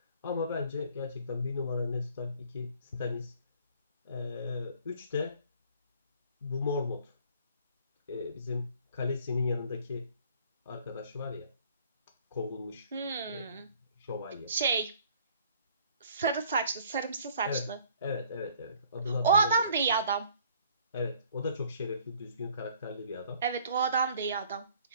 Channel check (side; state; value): both; inverted; correlation -0.57